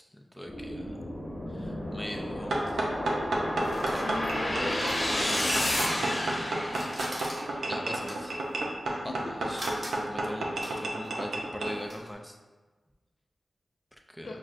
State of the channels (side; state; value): both; normal; correlation 0.93